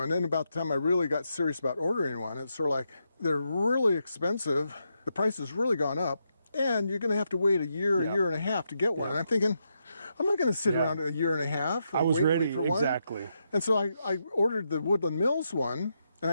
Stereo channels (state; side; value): inverted; both; correlation -0.82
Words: then about the time I really got serious about ordering one, it's sort of like, they're really expensive, the price has really gone up, and you're going to have to wait a year and a half to get one. And I'm thinking, I'm not going to sit around a year and a half. I was ready, for one. exactly. And so I ordered the Woodland Mills one, and